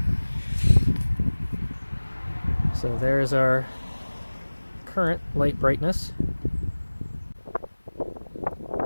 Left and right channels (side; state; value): both; inverted; correlation -1.00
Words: So there's our current light brightness.